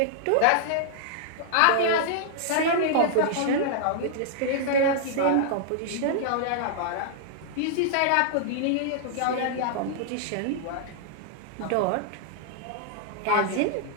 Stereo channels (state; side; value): different; both; correlation -0.01